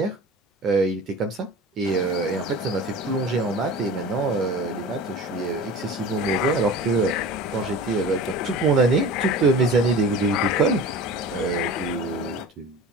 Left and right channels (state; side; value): normal; both; correlation 0.36